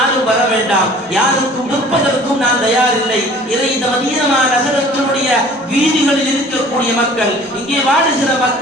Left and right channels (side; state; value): both; normal; correlation 0.49